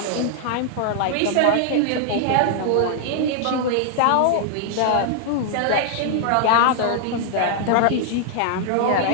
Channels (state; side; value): different; both; correlation 0.00